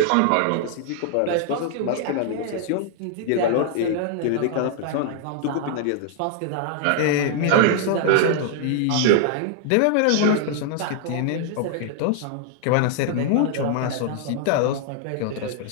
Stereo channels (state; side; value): different; both; correlation -0.01